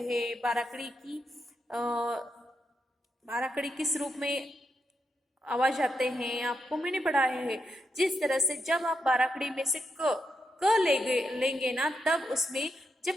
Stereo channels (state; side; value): normal; both; correlation 0.83